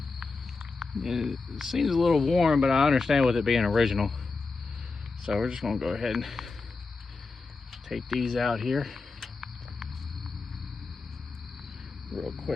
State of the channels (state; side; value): quieter; right; 4.1 dB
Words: It seems a little warm, but I understand with it being original. So we're just gonna go ahead and take these out here real